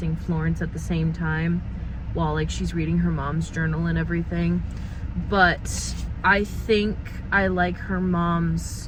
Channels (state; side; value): identical; both; correlation 1.00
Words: Florence at the same time while like she's reading her mom's journal and everything. But I think I like her